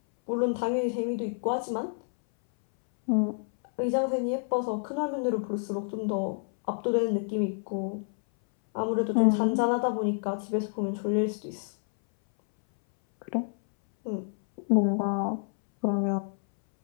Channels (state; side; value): silent; right; 59 dB below the other